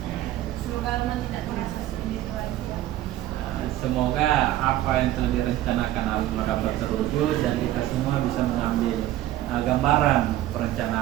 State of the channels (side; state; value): left; quieter; 14.1 dB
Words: Semoga Alma tidak merasa sendiri lagi. Semoga apa yang telah direncanakan Alma dapat terwujud dan kita semua bisa mengambil gambaran